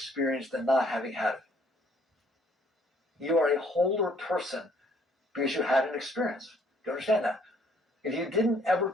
than not having had it. You are a wholer person because you had an experience. Do you understand that? If you didn't ever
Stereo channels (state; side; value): normal; both; correlation 0.63